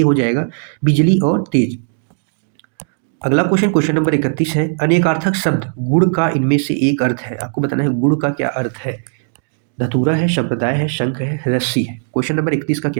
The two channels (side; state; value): left; silent; digital silence